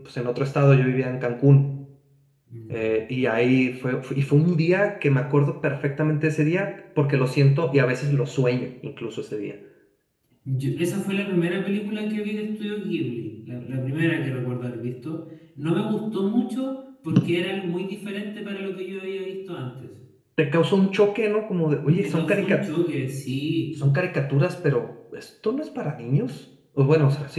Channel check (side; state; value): both; identical; correlation 1.00